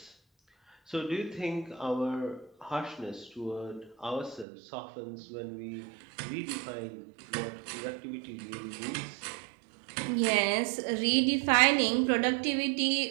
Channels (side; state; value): left; drops out; at 4.5 s